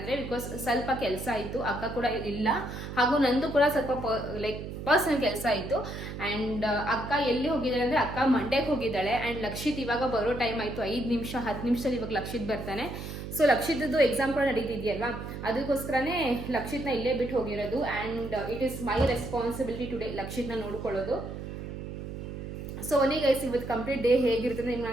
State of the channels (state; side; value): noise; right; hum, 8 dB below the sound